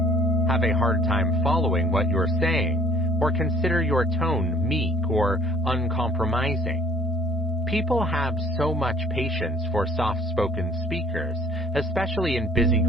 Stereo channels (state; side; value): normal; both; correlation 0.55